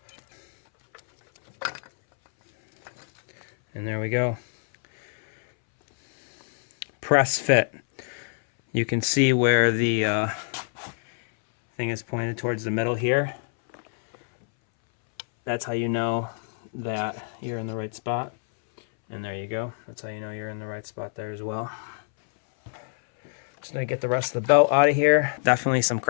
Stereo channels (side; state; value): right; silent; 61 dB below the other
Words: And there we go. Press fit. You can see where the thing is pointed towards the middle here. That's how you know that you're in the right spot. And there you go. That's how you know you're in the right spot there as well. Just gonna get the rest of the belt out of here. Definitely some